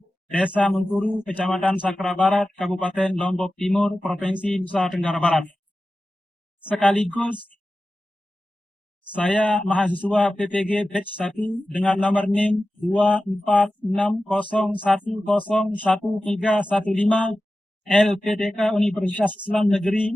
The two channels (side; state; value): both; normal; correlation 0.94